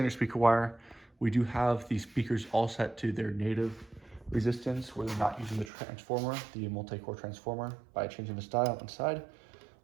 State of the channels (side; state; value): left; drops out; at 5.7 s